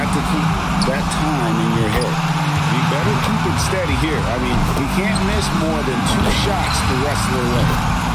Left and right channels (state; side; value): identical; both; correlation 1.00